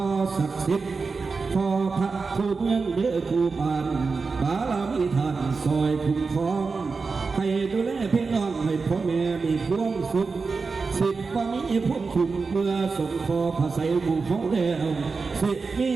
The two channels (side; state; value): left; quieter; 4.5 dB